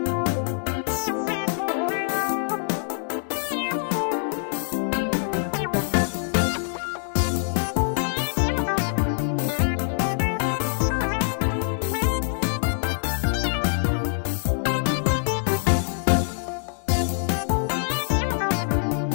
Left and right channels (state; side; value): silent; right; digital silence